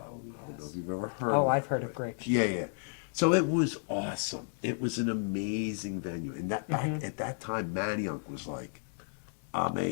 don't know if you've ever heard of it. I've heard of Grape Street. Yeah. So it was awesome. It was an amazing venue. And that back at that time, Manayunk was like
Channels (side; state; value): right; silent; digital silence